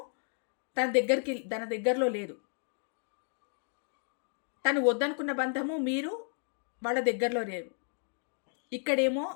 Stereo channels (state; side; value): silent; right; 56 dB below the other